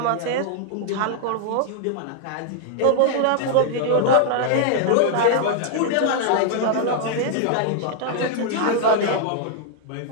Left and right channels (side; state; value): both; different; correlation -0.01